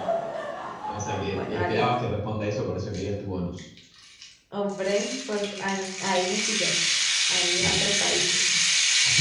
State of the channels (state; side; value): identical; both; correlation 1.00